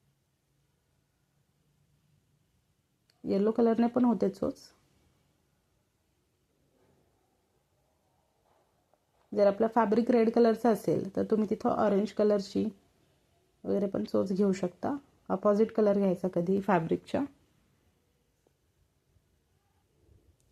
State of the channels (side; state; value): both; identical; correlation 1.00